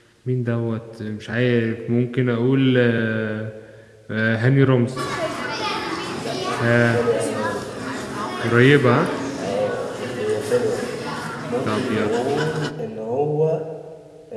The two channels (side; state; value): both; identical; correlation 1.00